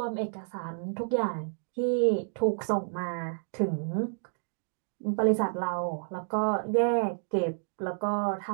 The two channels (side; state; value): left; silent; digital silence